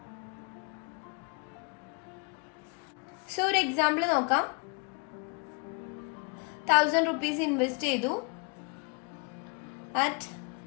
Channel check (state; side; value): quieter; right; 34.9 dB